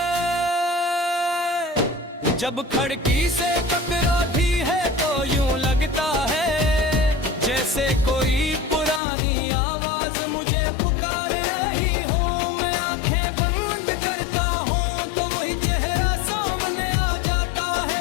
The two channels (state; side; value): drops out; right; at 9.0 s